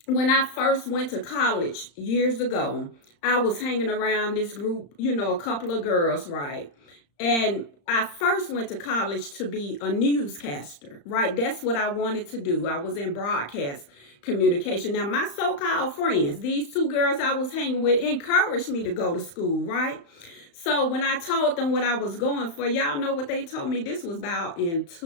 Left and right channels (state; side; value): late; right; 35 ms